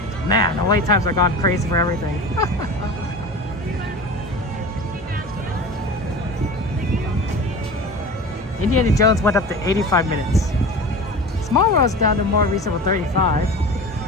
Man, the wait times are gone crazy for everything. Indiana Jones went up to 85 minutes. Small World's down to more reasonable 35.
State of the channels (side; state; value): both; normal; correlation 0.34